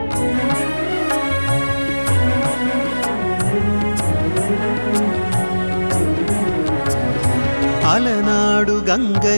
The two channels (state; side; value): inverted; both; correlation -1.00